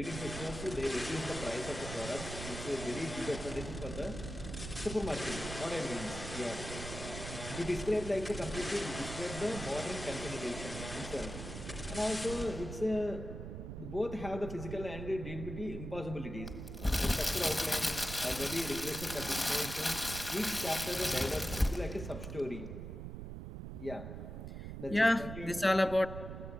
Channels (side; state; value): right; noise; rumble, 8 dB below the sound